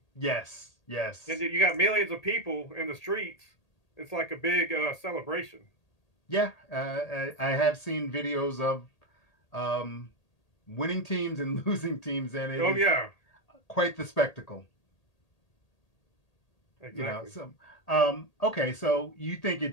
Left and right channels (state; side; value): late; right; 1.8 ms